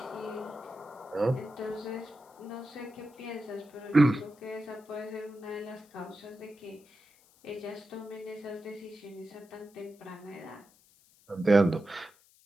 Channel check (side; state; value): left; noise; hiss, 28 dB below the sound